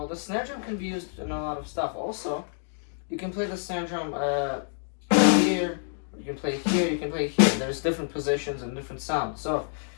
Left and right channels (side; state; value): right; silent; 60 dB below the other